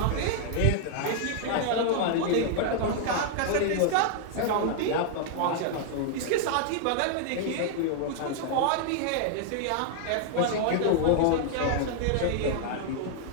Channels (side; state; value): both; different; correlation -0.01